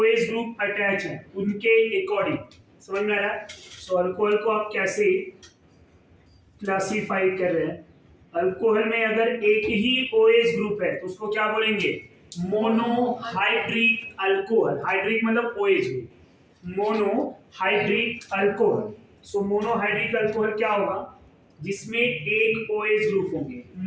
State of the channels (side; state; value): both; identical; correlation 1.00